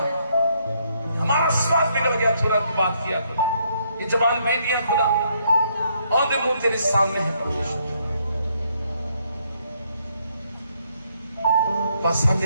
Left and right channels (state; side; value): inverted; both; correlation -0.72